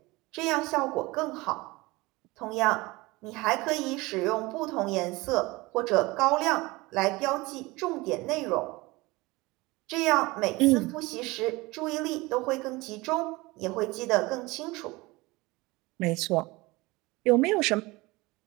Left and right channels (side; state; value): left; quieter; 22.2 dB